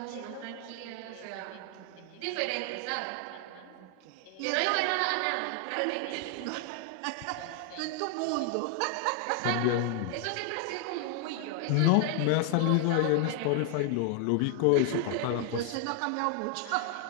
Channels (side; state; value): both; different; correlation 0.00